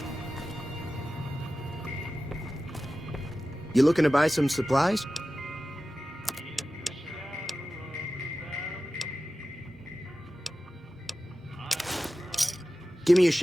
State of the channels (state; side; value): normal; both; correlation 0.95